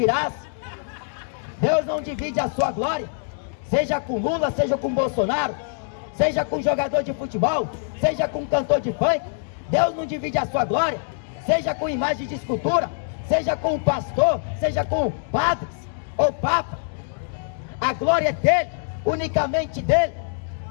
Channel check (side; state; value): right; silent; digital silence